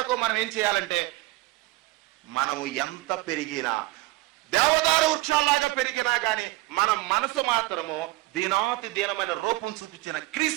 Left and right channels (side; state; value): left; quieter; 19.7 dB